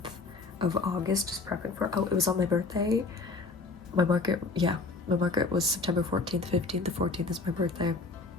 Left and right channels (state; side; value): quieter; right; 3.9 dB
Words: of August just prepping for, it was on my birthday. My market was September 14th, 15th. The 14th is my birthday.